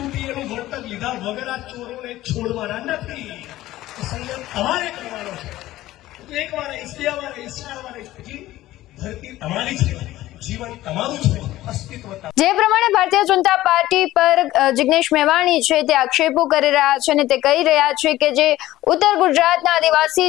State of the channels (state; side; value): quieter; right; 15.7 dB